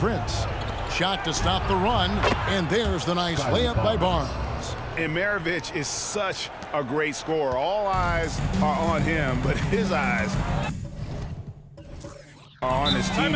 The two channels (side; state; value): both; identical; correlation 1.00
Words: Shot to stop the run. And there's the nice layup by Barnes. And Maravich is such a great scorer. All eyes are on him, but his eyes are on his